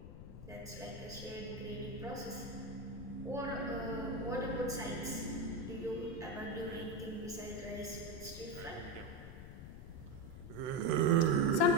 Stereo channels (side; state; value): left; noise; rumble, 11 dB below the sound